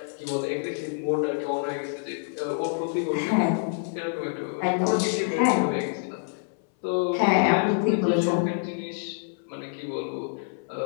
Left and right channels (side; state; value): right; silent; 60 dB below the other